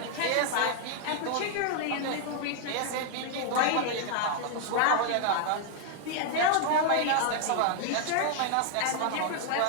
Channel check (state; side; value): different; both; correlation -0.01